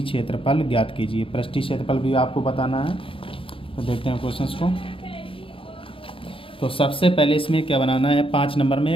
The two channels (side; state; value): right; late; 0.26 ms